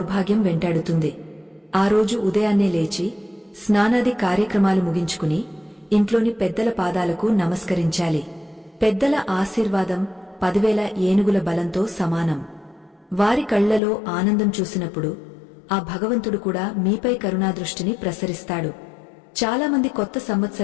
వెంటాడుతుంది. ఆ రోజు ఉదయాన్నే లేచి స్నానాది కార్యక్రమాలు ముగించుకుని ఇంట్లోని పెద్దల పాదాలకు నమస్కరించాలి. పెద్దల ఆశీర్వాదం 10,000 ఏనుగుల బలంతో సమానం. వారి కళ్లలో ఆనందం చూసినప్పుడు ఆ భగవంతుడు కూడా మీపై కరుణాదృష్టిని ప్రసరిస్తాడు. చాలామంది కొత్త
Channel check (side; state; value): right; drops out; at 13.8 s